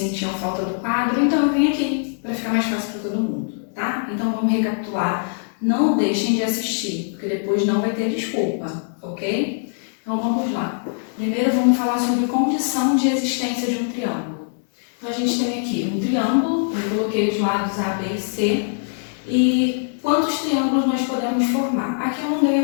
falta do quadro, então eu vim aqui para ficar mais fácil para todo mundo, tá? Então vamos recapitular, não deixem de assistir, porque depois não vai ter desculpa, ok? Então vamos lá. Primeiro vamos falar sobre condição de existência de um triângulo. Então, a gente tem aqui um triângulo, eu coloquei os lados A, B e C, e quantos triângulos nós podemos formar? Aqui eu não dei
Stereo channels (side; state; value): right; silent; digital silence